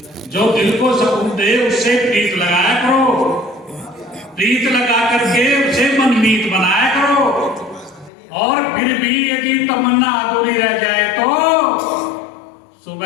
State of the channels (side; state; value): right; drops out; at 8.1 s